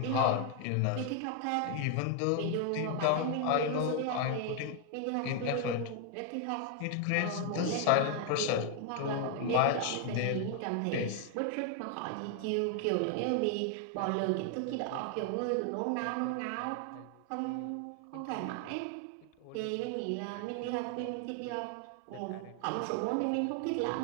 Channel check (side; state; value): both; different; correlation 0.00